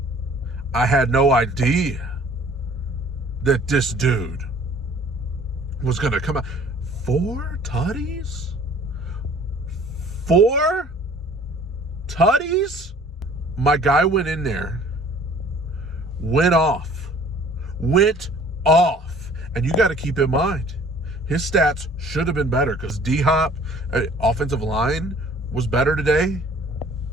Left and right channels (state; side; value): normal; both; correlation 0.52